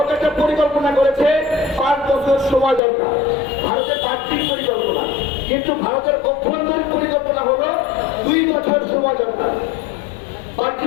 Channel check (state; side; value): drops out; right; at 2.8 s